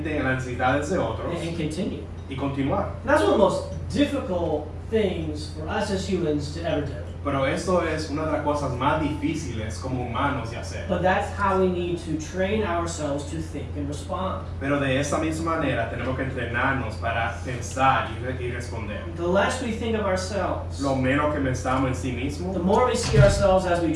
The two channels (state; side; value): identical; both; correlation 1.00